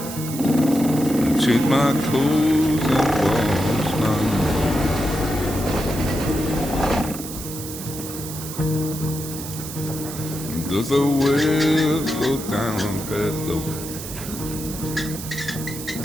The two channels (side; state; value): right; noise; hiss, 10 dB below the sound